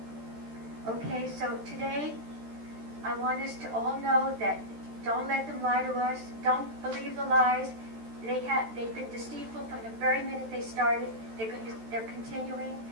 Okay, so today I want us to all know that don't let them lie to us. Don't believe the lies. They've been deceitful from the very minute they started. They're continuing,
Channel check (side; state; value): left; late; 13 ms